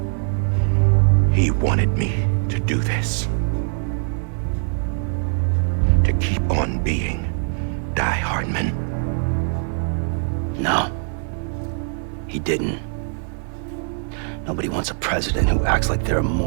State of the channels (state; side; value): silent; left; 63 dB below the other